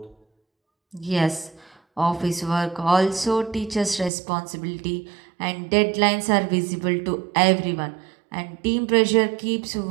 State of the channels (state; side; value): drops out; left; at 4.1 s